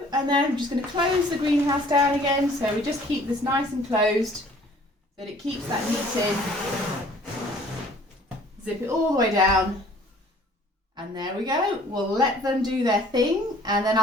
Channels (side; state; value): both; normal; correlation 0.54